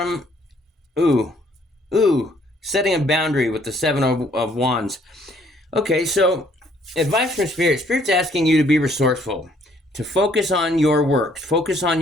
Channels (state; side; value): normal; both; correlation 0.64